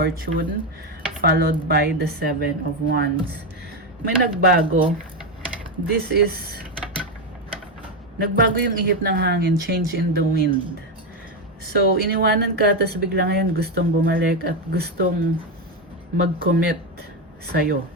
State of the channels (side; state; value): both; normal; correlation 0.09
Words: followed by the Seven of Wands. May nagbago. This is nagbago yung ihip ng hangin, change in the wind. So, iniwanan ka, tapos bigla ngayon gustong bumalik at gustong mag-commit sa'yo.